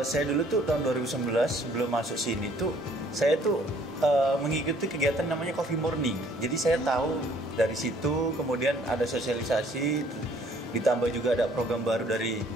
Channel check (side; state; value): both; normal; correlation 0.60